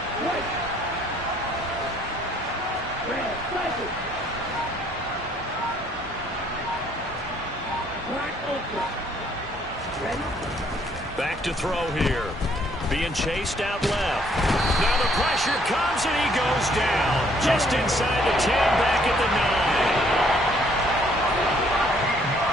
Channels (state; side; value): normal; both; correlation 0.65